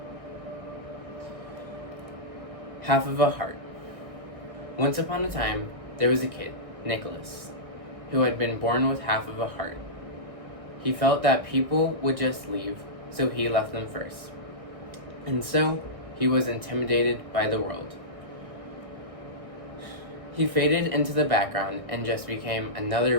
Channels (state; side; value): late; left; 1.6 ms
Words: Half of a heart. Once upon a time, there was a kid, Nicholas, who had been born with half of a heart. He felt that people would just leave, so he left them first. And so, he was intimidated by the world. He faded into the background and just became